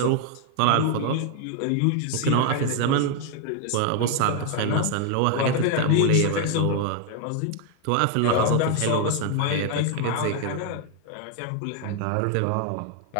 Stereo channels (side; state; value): both; different; correlation 0.00